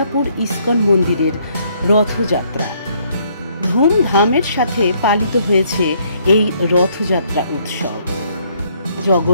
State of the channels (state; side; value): inverted; both; correlation -0.67